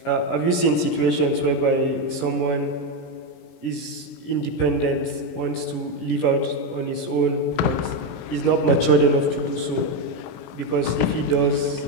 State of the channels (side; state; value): right; late; 17 ms